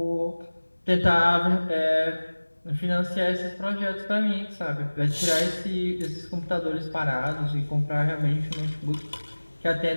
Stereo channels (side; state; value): both; inverted; correlation -1.00